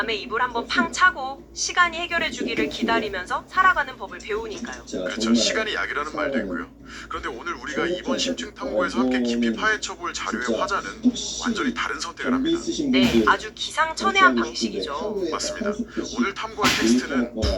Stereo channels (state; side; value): identical; both; correlation 1.00